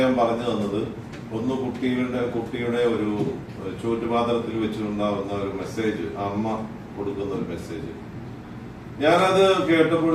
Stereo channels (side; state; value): both; identical; correlation 1.00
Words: പറഞ്ഞു തന്നത്. ഒന്ന് കുട്ടിയുടെ ഒരു ചോറ്റുപാത്രത്തിൽ വെച്ചിട്ടുണ്ടാവുന്ന ഒരു മെസ്സേജ്, അമ്മ കൊടുക്കുന്ന ഒരു മെസ്സേജ്. ഞാനത്